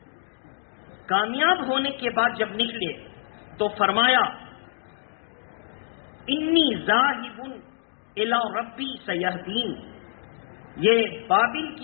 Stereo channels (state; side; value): silent; right; digital silence